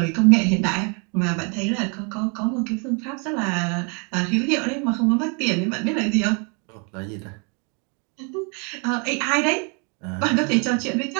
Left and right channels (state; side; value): quieter; left; 35.3 dB